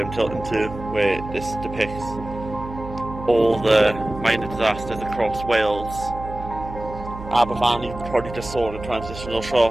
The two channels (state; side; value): noise; right; hum, 11 dB below the sound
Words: tilting to where this depicts all the mining disasters across Wales. Aber Valley, you probably just saw in a transitional